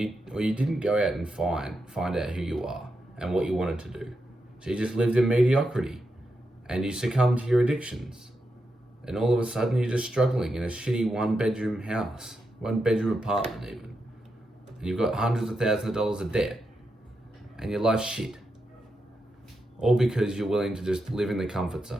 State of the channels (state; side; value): normal; both; correlation 0.86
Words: didn't go out and find out who you are and what you wanted to do. So you just lived in mediocrity, and you succumbed to your addictions, and all of a sudden you're just struggling in a shitty 1-bedroom house, 1-bedroom apartment even, and you've got hundreds of thousands of dollars of debt, and your life's shit. All because you're willing to just live in the comfort